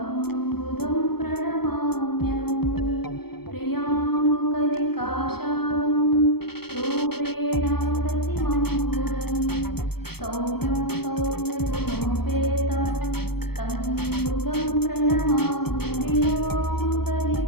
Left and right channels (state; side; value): late; right; 0.96 ms